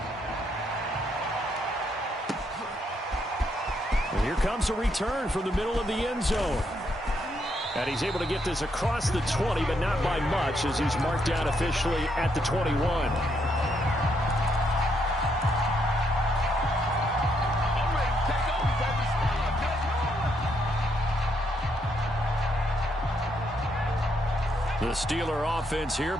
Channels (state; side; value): normal; both; correlation 0.76